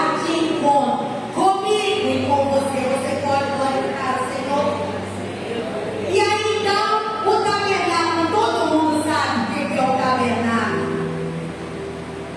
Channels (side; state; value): both; identical; correlation 1.00